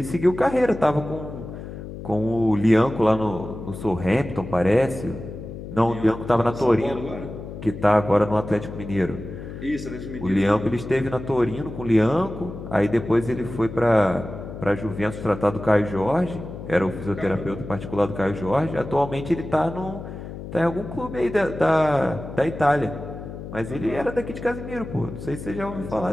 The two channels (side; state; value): left; noise; hum, 10 dB below the sound